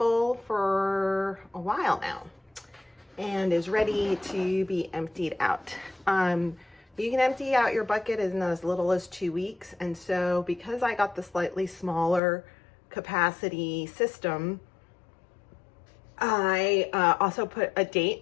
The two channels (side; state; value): right; drops out; at 12.2 s